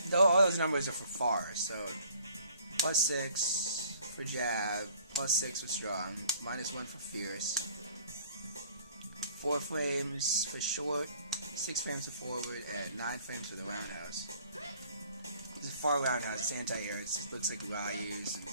All those numbers are for far. So +6 for jab, +6 for strong, -1 for fierce. 4 frames for short, 6 frames for forward, and 9 frames for the roundhouse. It's a far roundhouse. It's anti-air. It looks like Ryu's and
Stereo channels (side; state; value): both; inverted; correlation -0.56